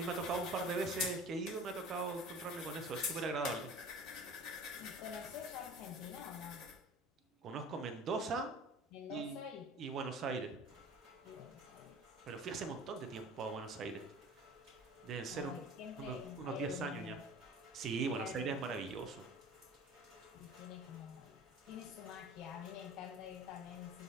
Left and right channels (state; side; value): normal; both; correlation 0.42